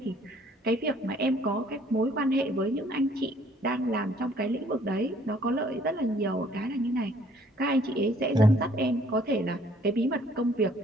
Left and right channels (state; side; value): normal; both; correlation 0.60